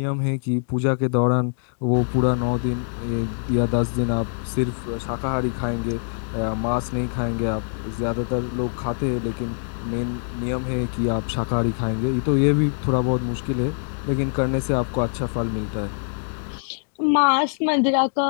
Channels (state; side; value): silent; right; digital silence